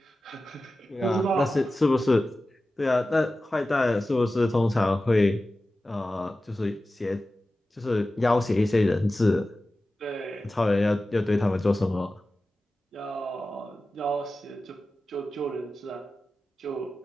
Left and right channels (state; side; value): normal; both; correlation 0.95